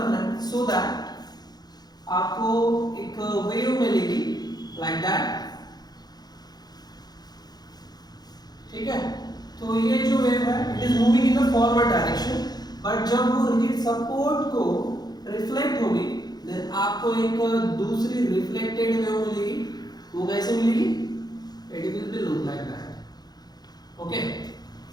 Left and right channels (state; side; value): late; right; 0.19 ms